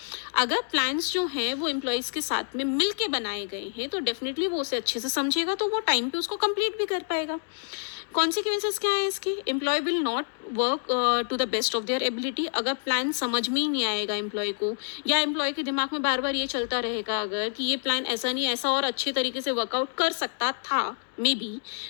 अगर प्लान्स जो हैं वो एम्प्लॉयज़ के साथ में मिल के बनाए गए हैं तो डेफिनेटली वो उसे अच्छे से समझेगा, तो वो टाइम पे उसको कंप्लीट भी कर पाएगा। कॉन्सिक्वेंसेस क्या है इसके? Employee will not work to the best of their ability. अगर प्लान समझ में ही नहीं आएगा एम्प्लॉय को, या एम्प्लॉय के दिमाग में बार बार ये चलता रहेगा अगर कि ये प्लान ऐसा नहीं, ऐसा और अच्छे तरीके से वर्कआउट कर सकता था मे बी,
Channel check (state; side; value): silent; right; digital silence